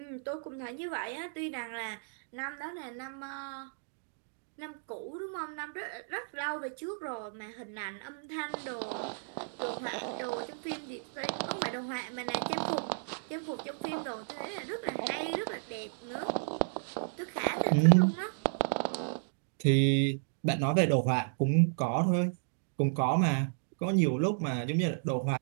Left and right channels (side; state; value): left; silent; digital silence